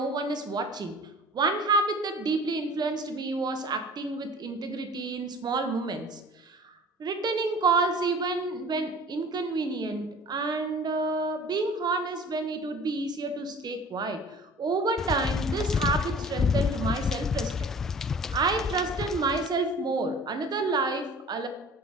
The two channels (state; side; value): normal; both; correlation 0.45